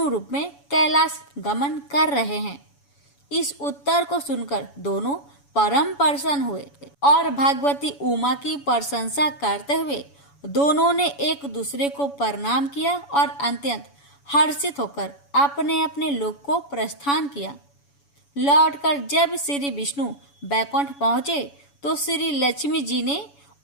रूप में कैलाश गमन कर रहे हैं। इस उत्तर को सुनकर दोनों परम प्रसन्न हुए और भगवती उमा की प्रशंसा करते हुए दोनों ने एक दूसरे को प्रणाम किया और अत्यंत हर्षित होकर अपने अपने लोक को प्रस्थान किया। लौटकर जब श्री विष्णु बैकुंठ पहुंचे तो श्री लक्ष्मी जी ने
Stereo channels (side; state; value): right; late; 7.1 ms